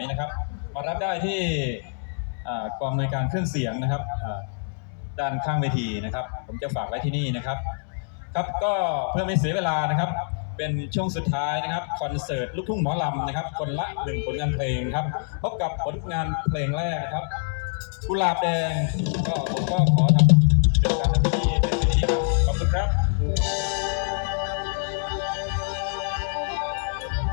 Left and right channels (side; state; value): right; silent; digital silence